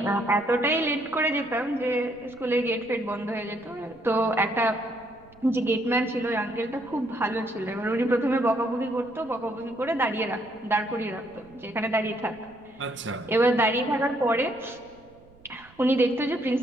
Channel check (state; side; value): noise; right; rumble, 27 dB below the sound